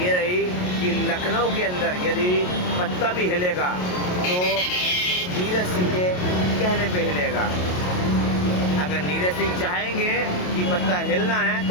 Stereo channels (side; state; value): right; late; 28 ms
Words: रही कि लखनऊ के अंदर यदि पत्ता भी हिलेगा तो नीरज सिंह के कहने पे हिलेगा। अगर नीरज सिंह चाहेंगे कि पत्ता हिलना है